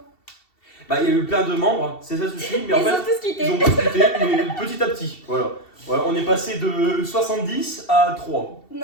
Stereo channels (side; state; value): right; late; 2.7 ms